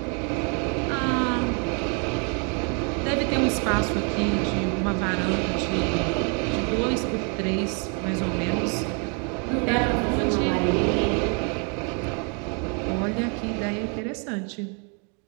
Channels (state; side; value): quieter; left; 37.3 dB